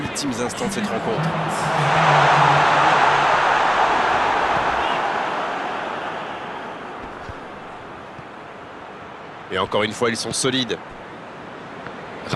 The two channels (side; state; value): both; identical; correlation 1.00